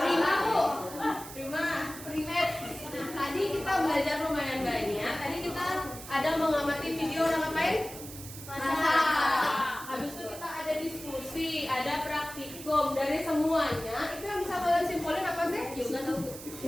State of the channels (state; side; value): noise; right; hiss, 13 dB below the sound